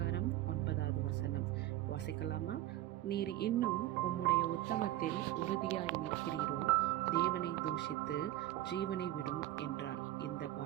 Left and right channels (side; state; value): left; quieter; 14.8 dB